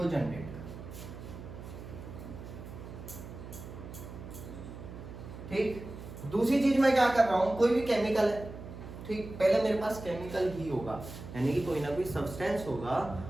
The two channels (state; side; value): noise; right; hum, 12 dB below the sound